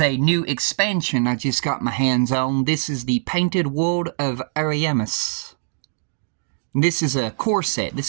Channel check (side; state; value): left; silent; digital silence